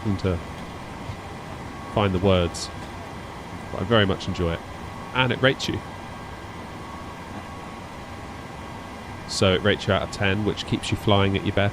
to find the words. But I very much enjoy it, and it rates you. So it rates you out of 10, which keeps you flying at your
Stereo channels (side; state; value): both; identical; correlation 1.00